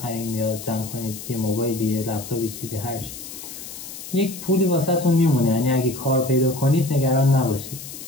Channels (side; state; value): left; noise; hiss, 12 dB below the sound